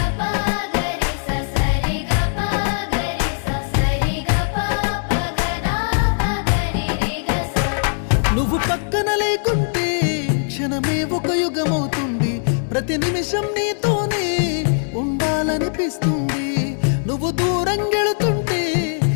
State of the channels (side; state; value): right; silent; digital silence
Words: నువ్వు పక్కన లేకుంటే క్షణమే ఒక యుగమవుతుంది, ప్రతి నిమిషం నీతోనే ఉండాలనిపిస్తుంది. నువ్వు దూరం గెళుతుంటే